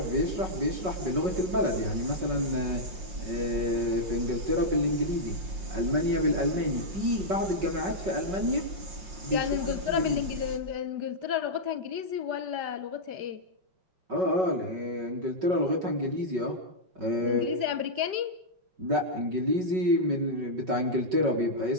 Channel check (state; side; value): late; left; 5.6 ms